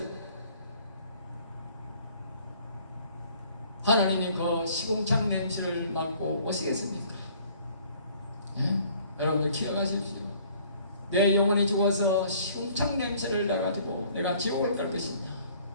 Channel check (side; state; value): both; inverted; correlation -0.57